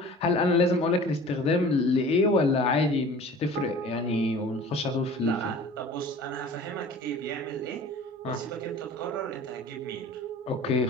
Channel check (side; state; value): both; normal; correlation 0.43